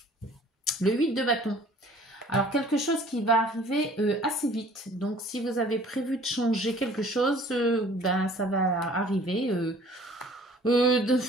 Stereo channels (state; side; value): normal; both; correlation 0.52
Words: Le 8 de bâton. Alors, quelque chose qui va arriver assez vite. Donc, si vous avez prévu de changer quelque chose, ça va arriver